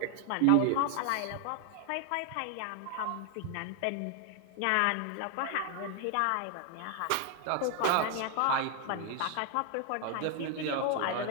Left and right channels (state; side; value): different; both; correlation 0.00